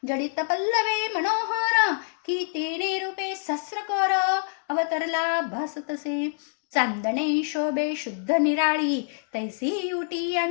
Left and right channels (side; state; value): right; silent; digital silence